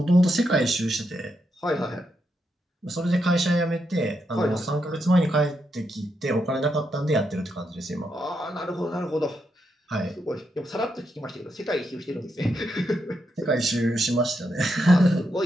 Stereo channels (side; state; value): both; normal; correlation 0.82